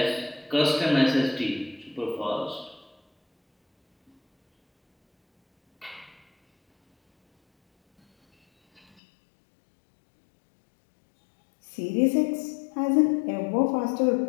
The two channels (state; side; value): drops out; right; at 8.8 s